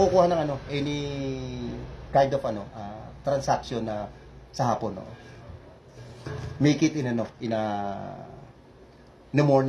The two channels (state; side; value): identical; both; correlation 1.00